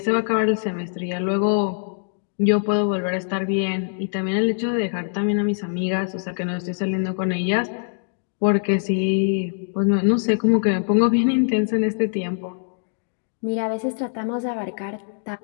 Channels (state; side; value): silent; right; digital silence